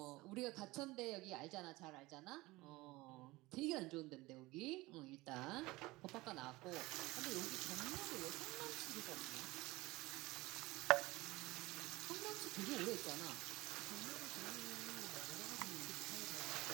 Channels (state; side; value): quieter; left; 20.7 dB